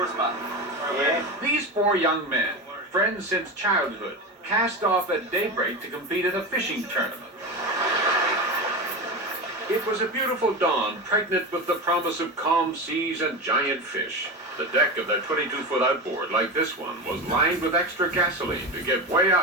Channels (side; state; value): both; normal; correlation 0.22